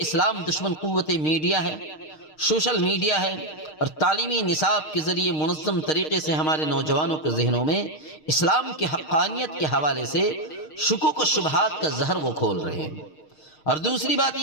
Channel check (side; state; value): right; late; 6.5 ms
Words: دشمن قوت میڈیا ہے، سوشل میڈیا ہے، اور تعلیمی نصاب کے ذریعے منظم طریقے سے ہمارے نوجوانوں کے ذہنوں میں اسلام کی حقانیت کے حوالے سے شکوک و شبہات کا زہر وہ کھول رہے ہیں۔ اور دوسری بات